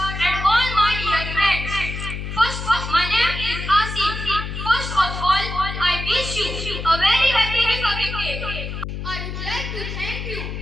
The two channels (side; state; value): left; noise; hum, 6 dB below the sound